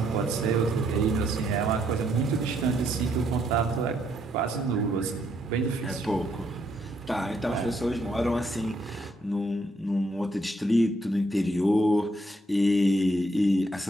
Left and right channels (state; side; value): normal; both; correlation 0.73